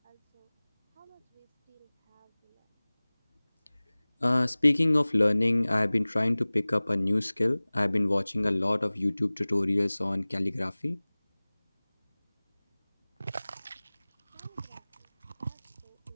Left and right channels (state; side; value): inverted; both; correlation -1.00